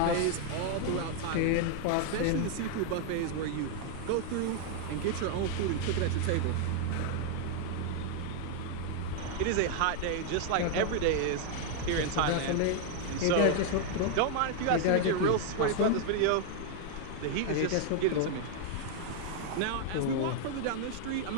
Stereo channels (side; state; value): both; different; correlation 0.00